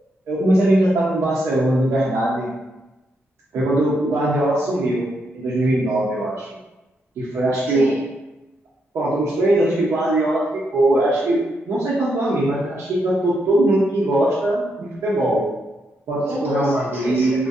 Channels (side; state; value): both; normal; correlation 0.79